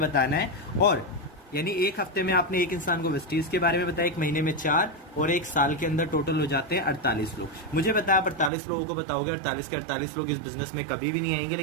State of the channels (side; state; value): left; drops out; at 8.5 s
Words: है, और यानी 1 हफ्ते में आपने एक इंसान को वेस्टीज के बारे में बताया, 1 महीने में 4, और 1 साल के अंदर टोटल हो जाते हैं 48 लोग। मुझे पता है आप 48 लोगों को बताओगे, 48 के 48 लोग इस बिजनेस में कभी भी नहीं आएंगे,